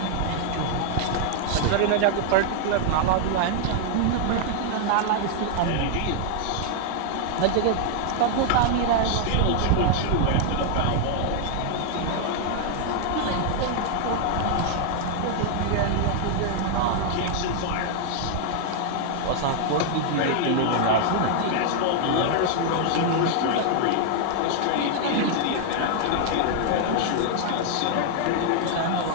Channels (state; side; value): different; both; correlation 0.00